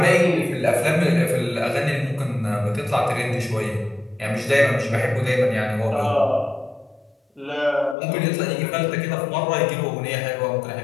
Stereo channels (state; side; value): drops out; right; at 8.0 s